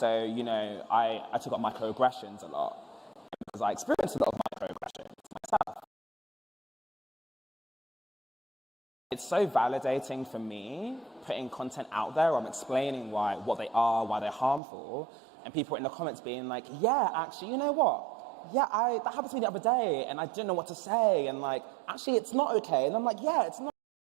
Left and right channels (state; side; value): drops out; left; at 14.6 s